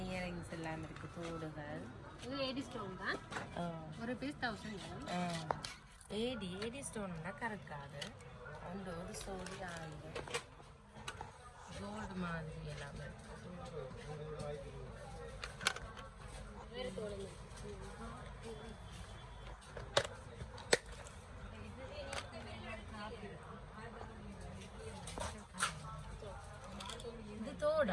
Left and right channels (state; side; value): identical; both; correlation 1.00